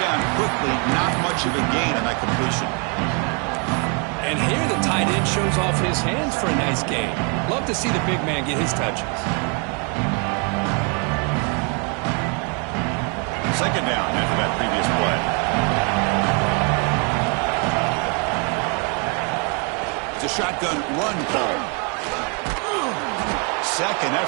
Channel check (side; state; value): left; quieter; 36.2 dB